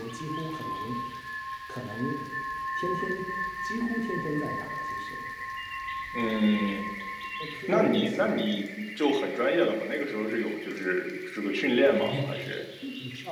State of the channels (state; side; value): identical; both; correlation 1.00